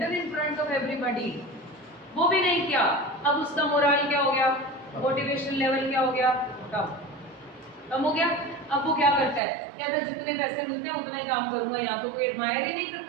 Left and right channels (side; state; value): left; drops out; at 9.4 s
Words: in front of everybody. वो भी नहीं किया। अब उसका मोरल क्या हो गया, मोटिवेशन लेवल क्या हो गया, कम हो गया। अब वो क्या करता है, कहता है जितने पैसे मिलते हैं उतना ही काम करूंगा, यहाँ तो कोई एडमायर ही नहीं